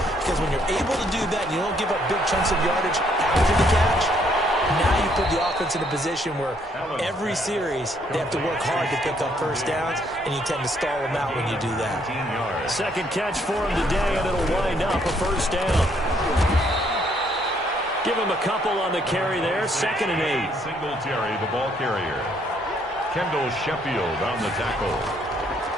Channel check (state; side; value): normal; both; correlation 0.68